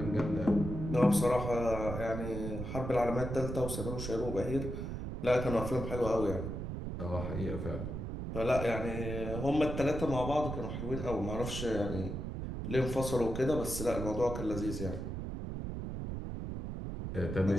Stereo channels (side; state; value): right; noise; rumble, 5 dB below the sound